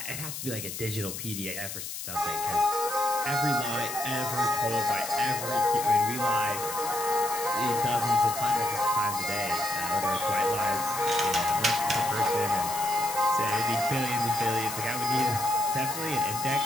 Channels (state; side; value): noise; left; hiss, 7 dB below the sound